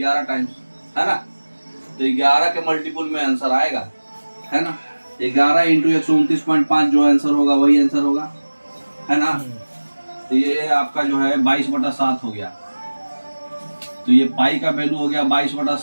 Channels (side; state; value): both; inverted; correlation -1.00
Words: टाइम्स है ना। तो 11 के मल्टीपल में आंसर आएगा है ना। 11 इंटू 129.5 जो आंसर होगा वही आंसर होगा है ना। तो ये आपका जो है 22/7 हो गया। तो ये पाई का वैल्यू हो गया